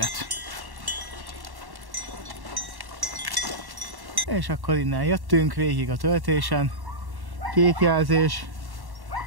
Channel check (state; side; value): late; left; 1.1 ms